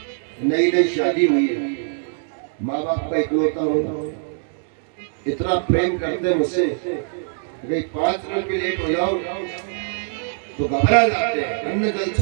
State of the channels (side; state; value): left; silent; digital silence